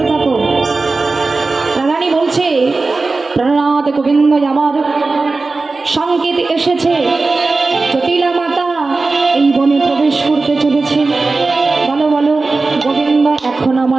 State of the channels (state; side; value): quieter; left; 3.7 dB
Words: থাকো। রাধারানী বলছে, প্রাণনাথ গোবিন্দ আমার সংকেত এসেছে, জটিলা মাতা এই বনে প্রবেশ করতে চলেছে। বলো বলো গোবিন্দ, এখন